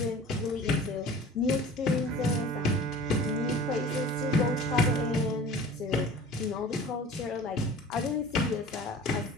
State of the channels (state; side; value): normal; both; correlation 0.42